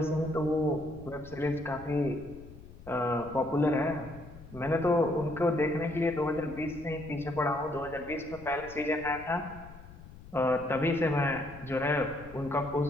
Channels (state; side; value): noise; left; rumble, 17 dB below the sound